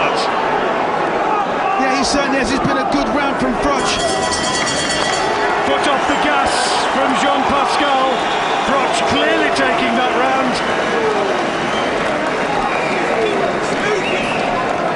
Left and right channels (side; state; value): both; identical; correlation 1.00